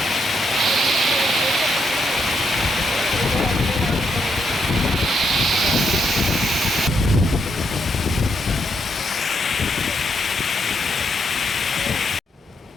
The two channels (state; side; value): normal; both; correlation 0.78